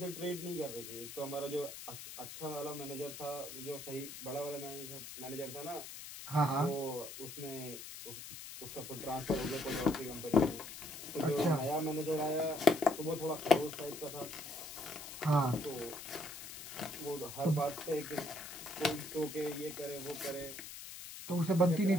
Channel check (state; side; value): noise; left; hiss, 11 dB below the sound